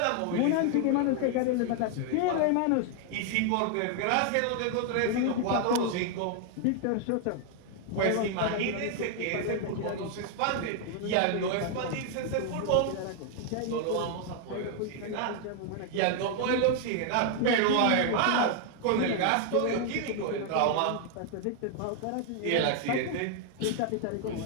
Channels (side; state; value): both; different; correlation 0.00